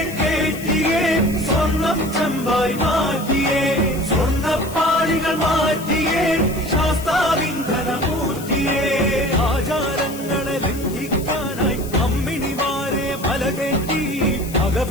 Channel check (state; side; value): noise; left; hiss, 15 dB below the sound